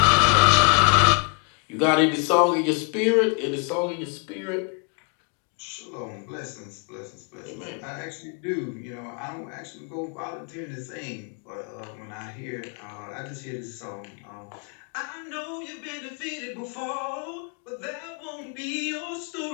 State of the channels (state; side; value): quieter; right; 35.2 dB